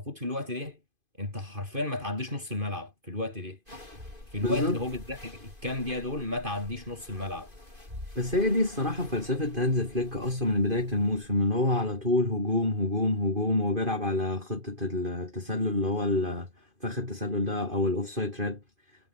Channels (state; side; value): late; left; 2.5 ms